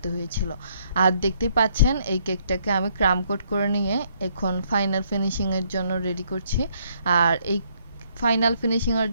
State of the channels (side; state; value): both; inverted; correlation -0.69